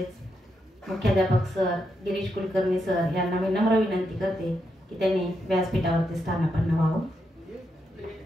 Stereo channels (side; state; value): both; normal; correlation 0.82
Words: मुख्याध्यापक सर गिरीश कुलकर्णी सर यांना मी नम्र विनंती करते की त्यांनी व्यासपीठावरती स्थानापन्न व्हावं.